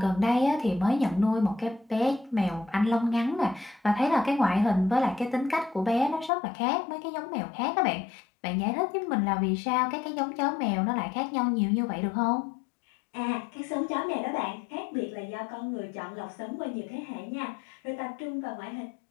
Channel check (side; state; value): right; drops out; at 6.3 s